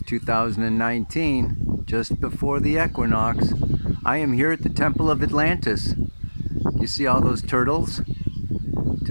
2019, just before the equinox. I am here at the Temple of Atlantis. You see all those turtles?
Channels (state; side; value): inverted; both; correlation -1.00